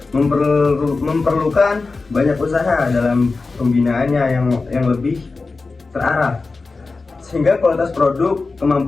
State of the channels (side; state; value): right; quieter; 3.9 dB